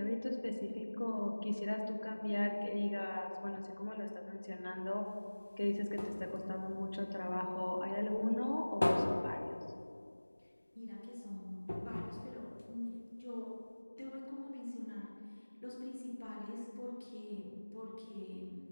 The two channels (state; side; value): inverted; both; correlation -1.00